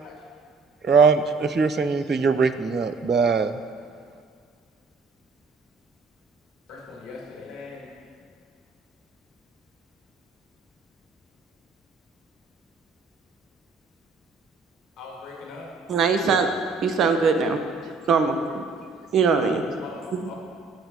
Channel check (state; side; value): quieter; left; 4.5 dB